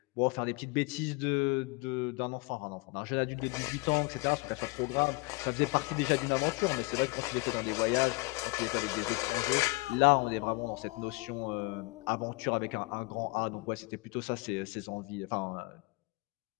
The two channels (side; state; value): right; quieter; 26.3 dB